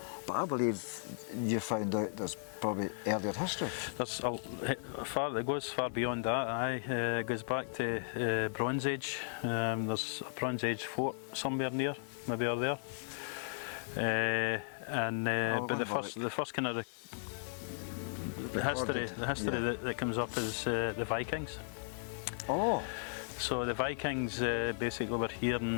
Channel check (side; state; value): right; silent; 54 dB below the other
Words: But I believe you found out there's probably earlier history. It goes far beyond that. Aye, it goes back to Bronze Age. There's a Bronze Age fort somewhere near, maybe over there. But the first kind of the history that comes up is the Vikings. Oh. So the Vikings basically were here